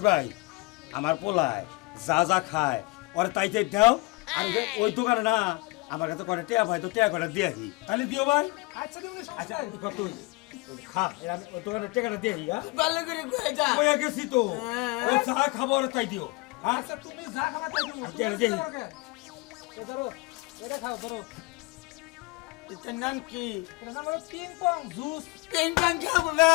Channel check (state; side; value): quieter; right; 24.6 dB